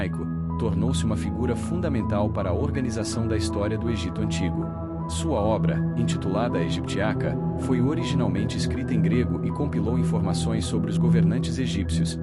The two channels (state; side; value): identical; both; correlation 1.00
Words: tornou-se uma figura fundamental para a organização da história do Egito Antigo. Sua obra, intitulada a Egiptiaca, foi originalmente escrita em grego e compilou informações sobre os governantes egípcios,